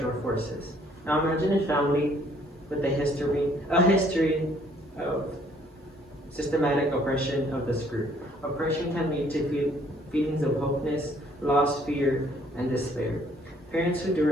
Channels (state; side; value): normal; both; correlation 0.62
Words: forces. Now imagine a family with a history of systematic oppression of this group. Oppression can lead to feelings of hopelessness, loss, fear, and despair. Parents who